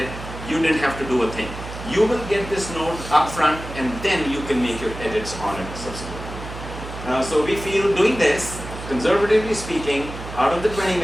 You didn't have to do a thing. You will get this note up front, and then you can make your edits on it subsequently. So we feel doing this, conservatively speaking, out of the 20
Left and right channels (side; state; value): right; noise; hum, 11 dB below the sound